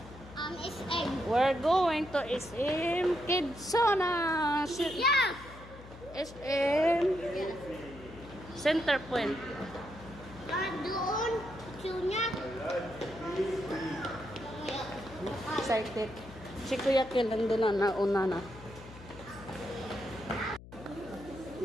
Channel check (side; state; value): left; noise; hum, 17 dB below the sound